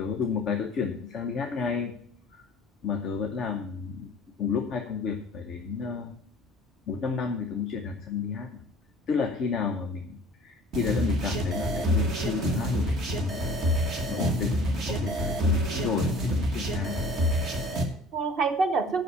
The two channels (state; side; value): normal; both; correlation 0.47